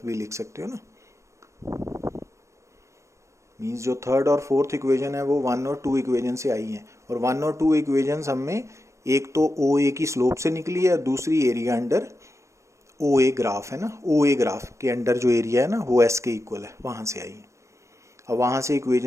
भी लिख सकते हो ना. मीन्स जो थर्ड और फोर्थ इक्वेशन है वो 1 और 2 इक्वेशन से आई हैं, और 1 और 2 इक्वेशन हमें एक तो ओ ए की स्लोप से निकली है और दूसरी area under O A graph है ना, ओ ए ग्राफ के अंडर जो एरिया है ना वो s के इक्वल है, वहां से आई है. अब वहां से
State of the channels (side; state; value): left; late; 0.14 ms